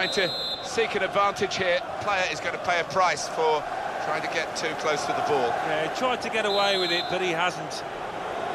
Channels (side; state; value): both; identical; correlation 1.00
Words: to seek an advantage here. Player is going to pay a price for trying to get too close to the ball. Yeah, he tried to get away with it, but he hasn't.